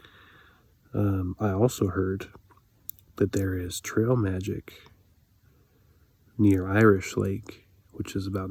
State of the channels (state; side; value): identical; both; correlation 1.00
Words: I also heard that there is trail magic near Irish Lake, which is about